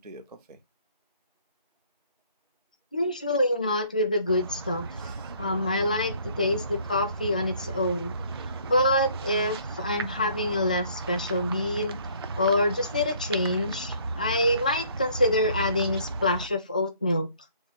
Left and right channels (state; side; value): inverted; both; correlation -0.60